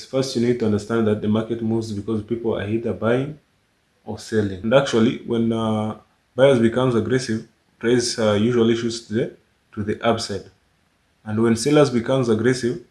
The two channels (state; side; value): identical; both; correlation 1.00